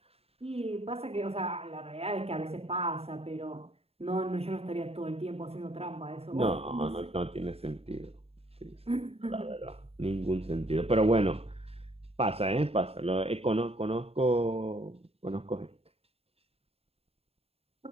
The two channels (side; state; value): left; late; 0.29 ms